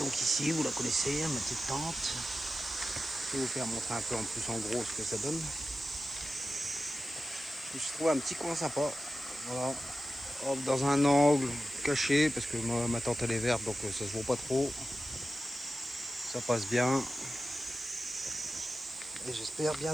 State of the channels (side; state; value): right; noise; hiss, 23 dB below the sound